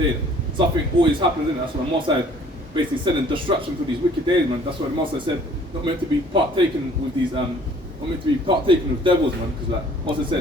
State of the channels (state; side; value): normal; both; correlation 0.55